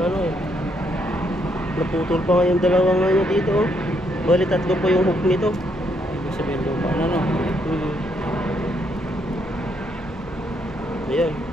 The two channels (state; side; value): normal; both; correlation 0.74